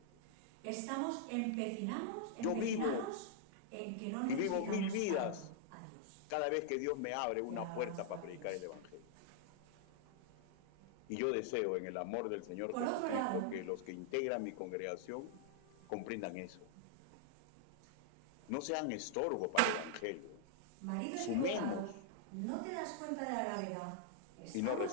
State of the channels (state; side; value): different; both; correlation -0.01